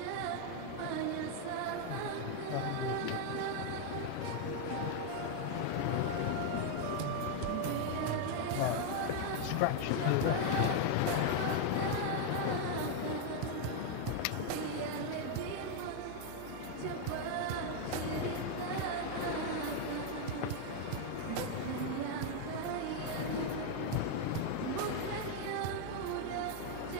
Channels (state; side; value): different; both; correlation 0.00